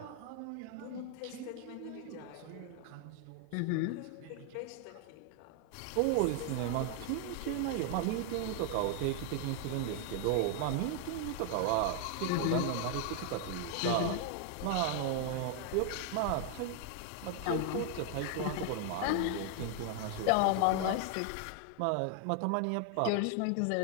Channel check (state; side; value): different; both; correlation 0.00